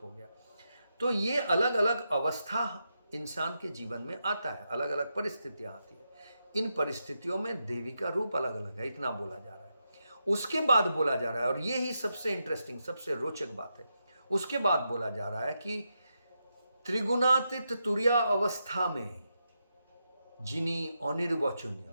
गया। तो ये अलग अलग अवस्था इंसान के जीवन में आता है, अलग अलग परिस्थितियां आती है। इन परिस्थितियों में देवी का रूप अलग अलग है, इतना बोला जा रहा है। उसके बाद बोला जा रहा है, और ये ही सबसे इंटरेस्टिंग, सबसे रोचक बात है, उसके बाद बोला जा रहा है कि त्रिगुणातीत तुरिया अवस्था में जिनी अनिर्वचनीय,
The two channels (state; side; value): inverted; both; correlation -0.85